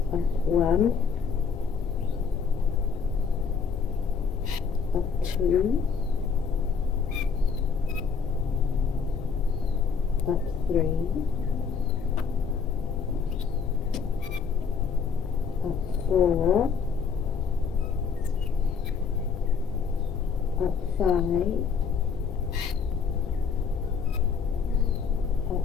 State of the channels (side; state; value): right; quieter; 5.9 dB